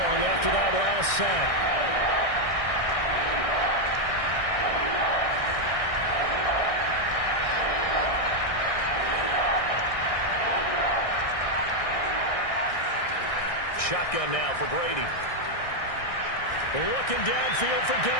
after that last sack. Shotgun now for Brady. Looking downfield for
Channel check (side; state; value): right; late; 1.6 ms